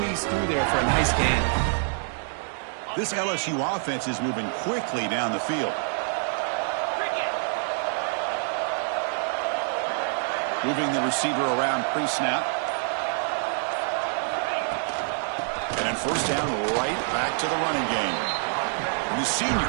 through there for a nice gain. This LSU offense is moving quickly down the field. Moving the receiver around pre-snap. And then first down, right back to the running game. And the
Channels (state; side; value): silent; left; 56 dB below the other